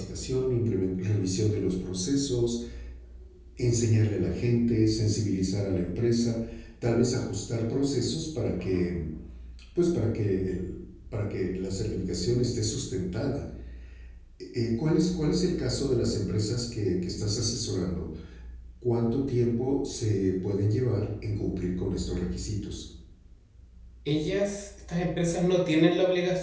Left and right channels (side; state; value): both; identical; correlation 1.00